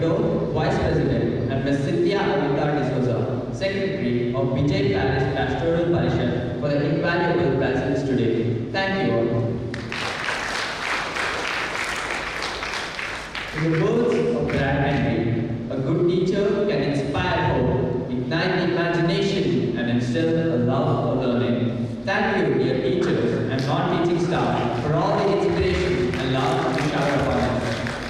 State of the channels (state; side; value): identical; both; correlation 1.00